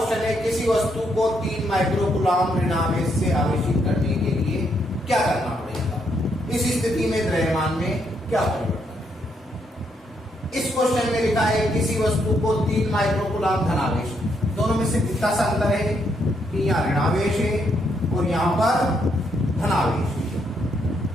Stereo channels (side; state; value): both; normal; correlation 0.76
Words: है किसी वस्तु को 3 माइक्रो कूलाम ऋणावेश से आवेशित करने के लिए क्या करना पड़ेगा? इस स्थिति में द्रव्यमान में क्या परिवर्तन है? इस क्वेश्चन में लिखा है किसी वस्तु को 3 माइक्रो कूलाम धनावेश, दोनों में से कितना सा अंतर है कि यहाँ ऋणावेश है और यहाँ पर धनावेश है।